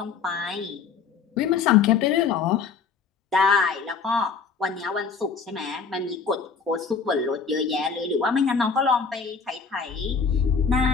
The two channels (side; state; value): right; quieter; 5.6 dB